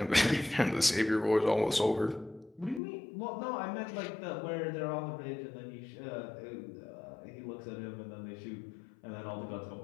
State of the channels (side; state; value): right; drops out; at 2.8 s